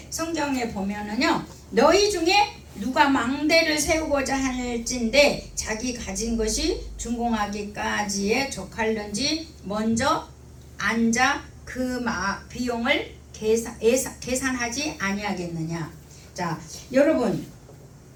성경에 보면은요, 너희 중에 누가 망대를 세우고자 할진대 자기 가진 것이 준공하기까지에 족할는지 먼저 앉아 그 비용을 계산하지 아니하겠느냐. 자, 여러분,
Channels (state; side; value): identical; both; correlation 1.00